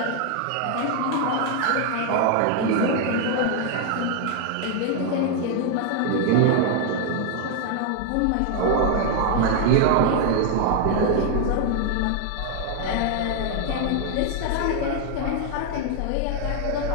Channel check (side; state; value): both; different; correlation 0.00